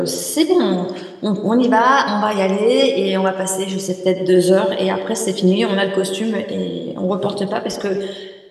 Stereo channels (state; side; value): identical; both; correlation 1.00